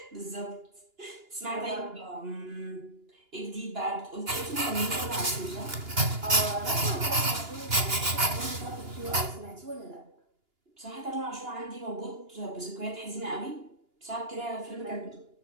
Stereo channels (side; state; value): left; late; 2.9 ms